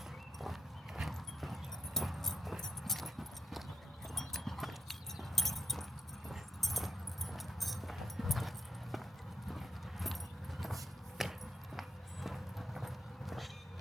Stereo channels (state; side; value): normal; both; correlation 0.81